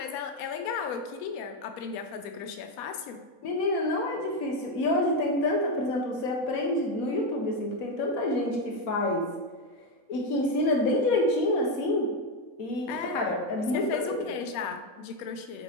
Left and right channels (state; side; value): late; right; 4.2 ms